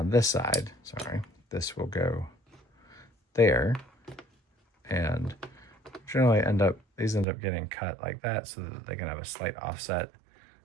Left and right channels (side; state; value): left; drops out; at 7.2 s